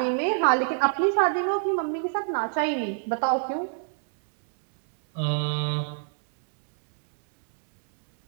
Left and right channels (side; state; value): left; silent; digital silence